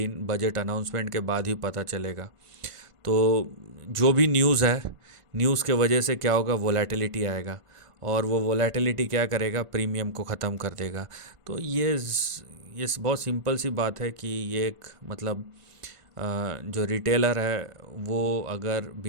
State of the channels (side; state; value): left; late; 1.5 ms